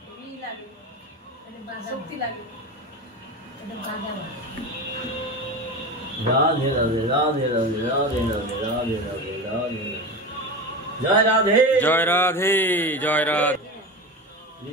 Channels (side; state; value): both; normal; correlation 0.25